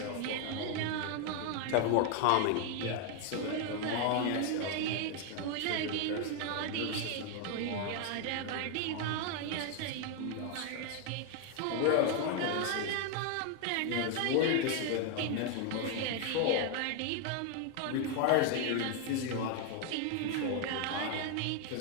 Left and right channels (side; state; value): both; different; correlation 0.00